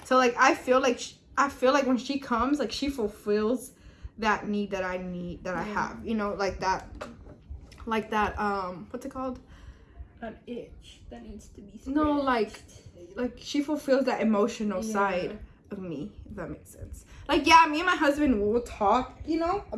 So like I feel like when she comes, like she fulfills that need that I have. You know, like that what's it called? An itch that needs to be scratched. No, like she fulfills that emotional side of me, if that makes sense. Like, yeah, me and my husband will talk, you know,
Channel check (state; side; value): identical; both; correlation 1.00